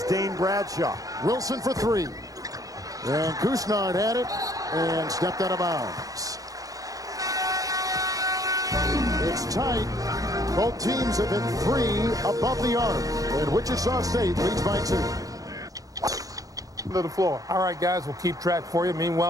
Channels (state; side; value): late; left; 0.17 ms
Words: Dane Bradshaw. Wilson for 3. And Kusnart had it and stepped out of bounds. It's tight. Both teams have hit 3 above the arc. And Wichita State leads by 2. To the floor. All right, guys, we'll keep track for you.